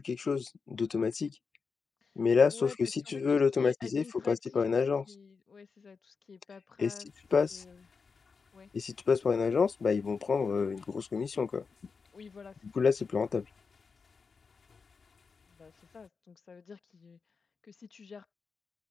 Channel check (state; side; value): quieter; right; 5.1 dB